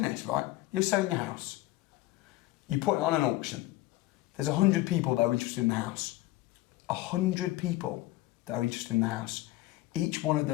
this, right? You're selling your house. You put it on an auction. There's 100 people that are interested in the house. 100 people that are interested in the house. Each one of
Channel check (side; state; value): right; quieter; 17.6 dB